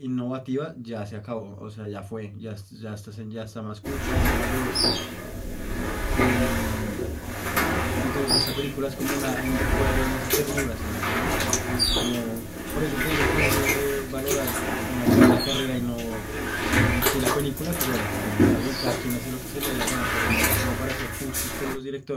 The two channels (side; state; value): both; identical; correlation 1.00